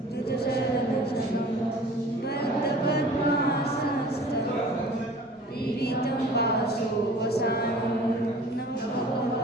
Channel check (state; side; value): normal; both; correlation 0.45